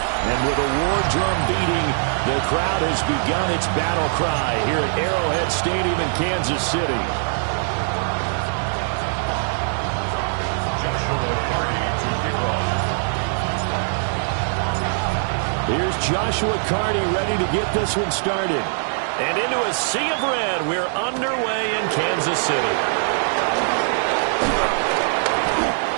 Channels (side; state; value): left; silent; digital silence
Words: And with a war drum beating, the crowd has begun its battle cry here at Arrowhead Stadium in Kansas City. Here's Joshua Carney ready to get this one started. And into a sea of red, we're underway in Kansas City.